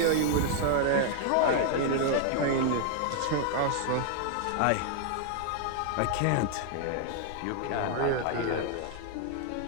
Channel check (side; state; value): both; different; correlation 0.00